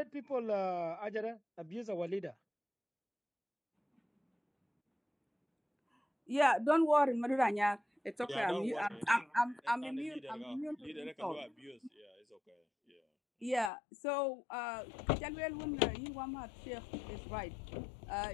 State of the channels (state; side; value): drops out; right; at 13.7 s